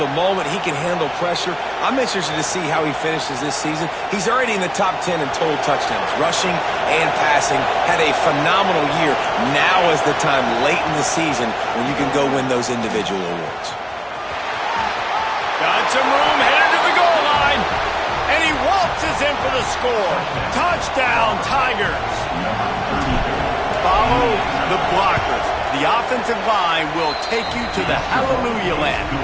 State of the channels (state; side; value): identical; both; correlation 1.00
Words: the moment, he can handle pressure. I'm interested to see how he finishes this season. He's already in the top 10 in total touchdowns, rushing and passing. Had a phenomenal year. Now is the time late in the season when you can go win those individual awards. Got some room, headed to the goal line. And he waltzes in for the score. Touchdown, Tigers. Follow the blockers. The offensive line will take you to the hallelujah land.